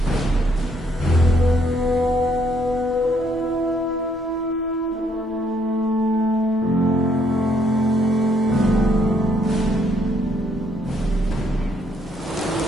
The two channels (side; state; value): both; normal; correlation 0.70